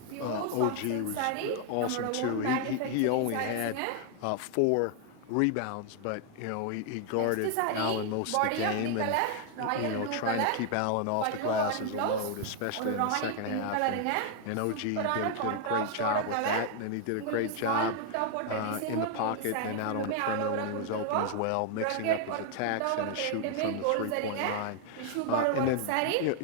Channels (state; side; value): different; both; correlation 0.00